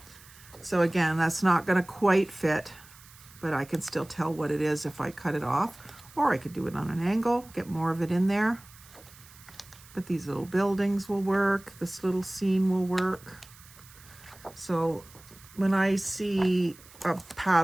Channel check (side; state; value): right; noise; hiss, 22 dB below the sound